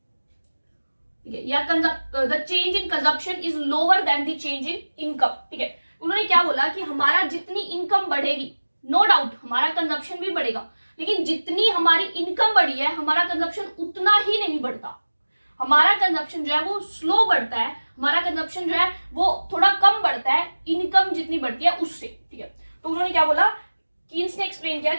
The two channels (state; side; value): inverted; both; correlation -1.00